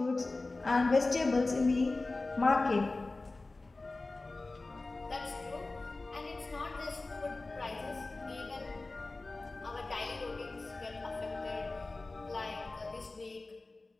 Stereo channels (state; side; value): quieter; right; 3.3 dB